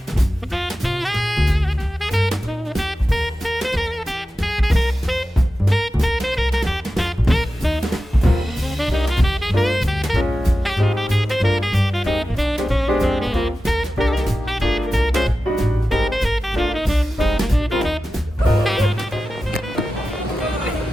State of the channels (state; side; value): normal; both; correlation 0.93